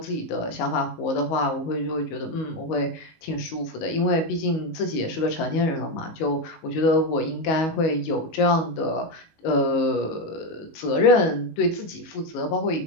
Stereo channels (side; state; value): right; late; 19 ms